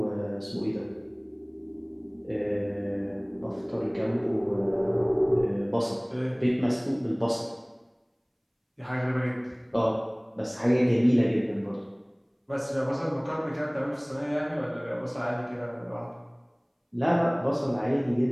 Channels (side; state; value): both; identical; correlation 1.00